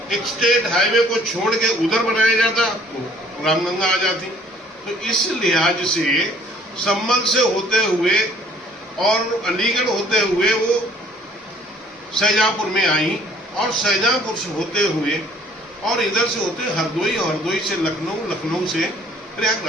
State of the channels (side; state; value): both; normal; correlation 0.58